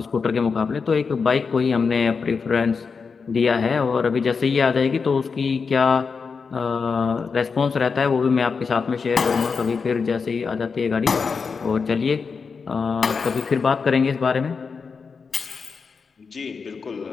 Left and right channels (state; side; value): quieter; right; 5.2 dB